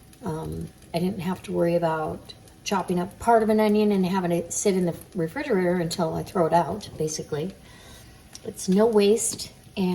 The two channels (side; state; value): both; identical; correlation 1.00